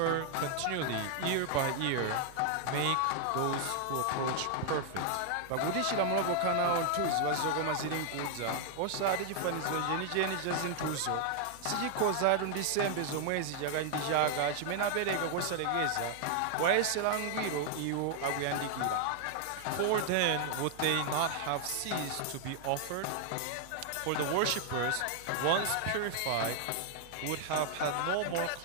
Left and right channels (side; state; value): both; different; correlation 0.00